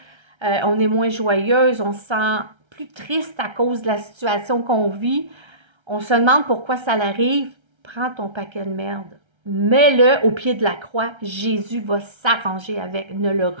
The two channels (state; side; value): late; left; 1.3 ms